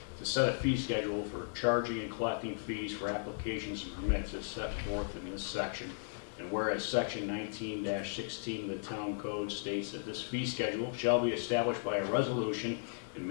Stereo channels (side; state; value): right; silent; digital silence